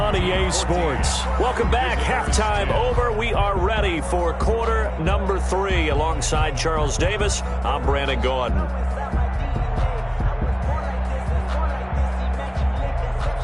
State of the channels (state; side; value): identical; both; correlation 1.00